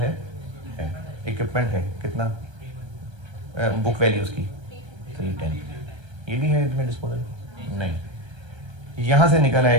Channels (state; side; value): late; left; 1.3 ms